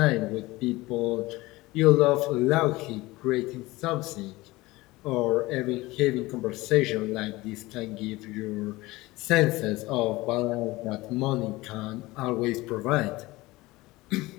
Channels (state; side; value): quieter; right; 20.2 dB